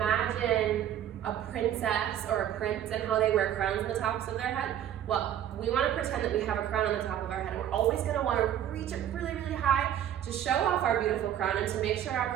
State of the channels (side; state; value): left; quieter; 10.7 dB